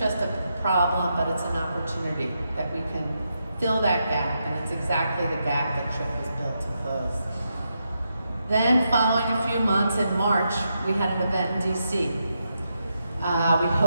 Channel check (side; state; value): both; inverted; correlation -0.84